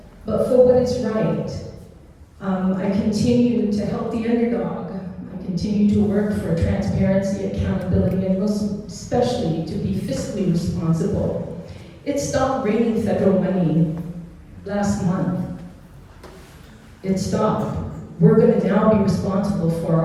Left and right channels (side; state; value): both; identical; correlation 1.00